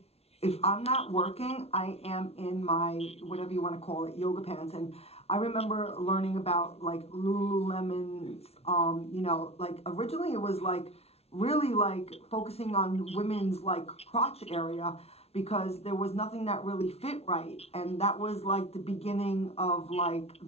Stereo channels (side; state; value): right; late; 0.30 ms